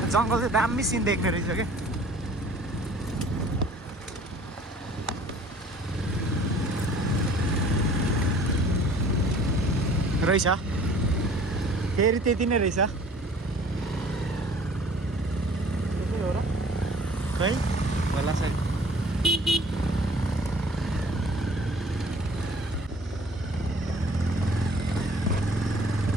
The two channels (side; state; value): both; normal; correlation 0.51